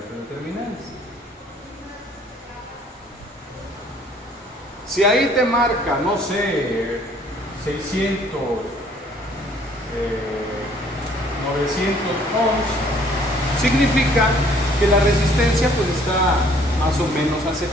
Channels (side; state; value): both; normal; correlation 0.59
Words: de terminales. Si ahí te marca, no sé, 600, 900 ohms, significa que la resistencia pues está más o menos